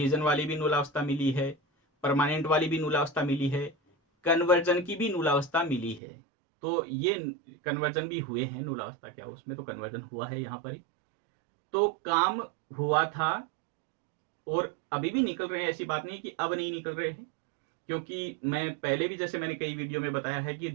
वाली भी नूलावस्था मिली है, परमानेंट वाली भी नूलावस्था मिली है, कन्वर्जन की भी नूलावस्था मिली है। तो ये कन्वर्जन भी हुए हैं, नूलावस्था क्या उसमें तो कन्वर्जन हुआ है यहाँ पर ही, तो काम हुआ था और अभी भी निकल रहे हैं, ऐसी बात नहीं कि अब नहीं निकल रहे हैं। क्योंकि मैं पहले भी, जैसे मैंने कई वीडियो में बताया है कि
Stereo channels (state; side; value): drops out; left; at 6.0 s